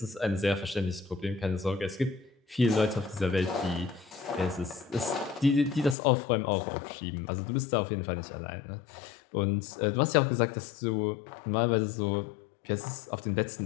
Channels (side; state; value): right; drops out; at 6.0 s